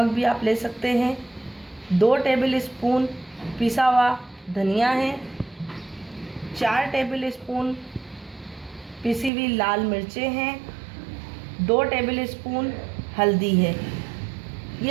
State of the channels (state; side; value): drops out; left; at 9.3 s